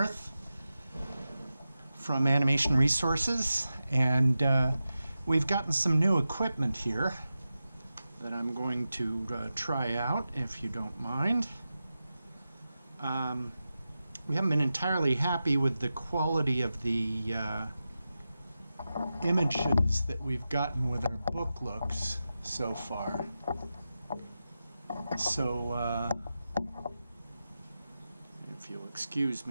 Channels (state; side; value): inverted; both; correlation -0.92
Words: from Animation Resources, and we've gotten some new equipment here that I'm going to try out, if you don't mind. We haven't been entirely happy with the quality of the images that we've gotten with our book looks so far. So, if you'll excuse